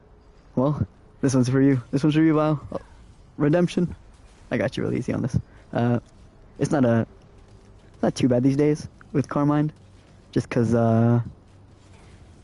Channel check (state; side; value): identical; both; correlation 1.00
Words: Well, this one's for you. This one's for you, Vile. Oh, redemption. I got you real easy on this. It's not too bad these days with Carmine. Just because, well,